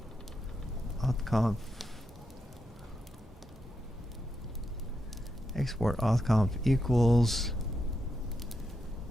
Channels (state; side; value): normal; both; correlation 0.84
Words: authconf export authconf equals